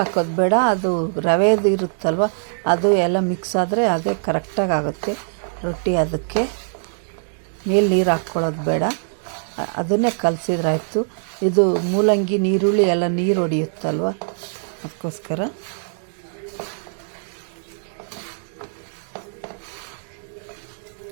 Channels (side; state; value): left; silent; 64 dB below the other